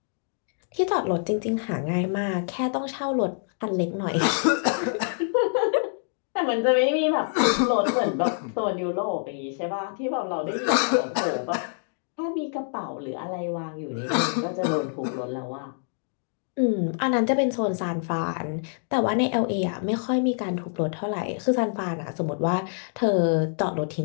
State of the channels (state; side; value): silent; right; digital silence